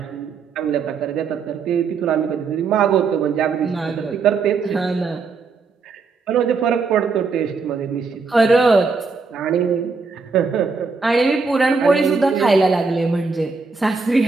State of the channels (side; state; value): left; quieter; 4.7 dB